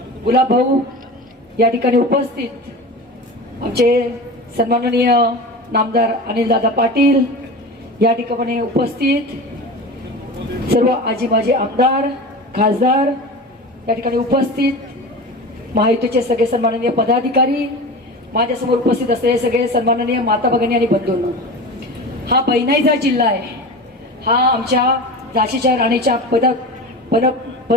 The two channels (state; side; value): normal; both; correlation 0.30